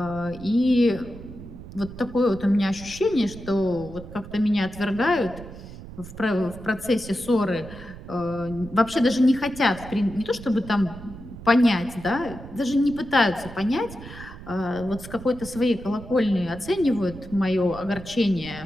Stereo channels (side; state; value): right; noise; rumble, 14 dB below the sound